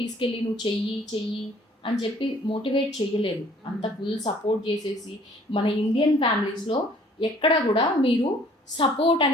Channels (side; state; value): both; normal; correlation 0.56